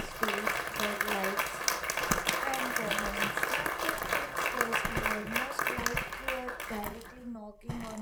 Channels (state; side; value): identical; both; correlation 1.00